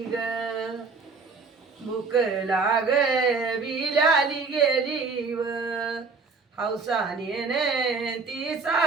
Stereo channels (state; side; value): quieter; left; 4.5 dB